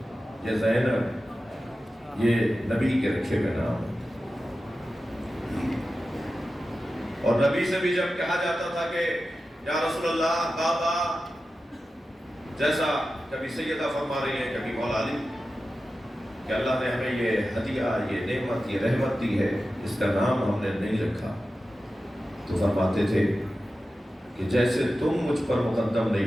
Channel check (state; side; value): normal; both; correlation 0.93